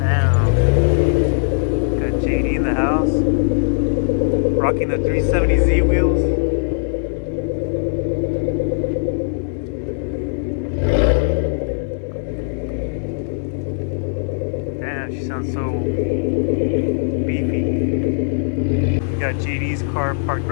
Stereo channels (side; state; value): right; silent; digital silence